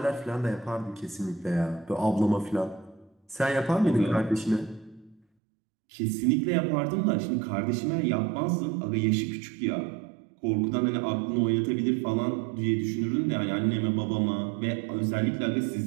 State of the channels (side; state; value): left; drops out; at 5.2 s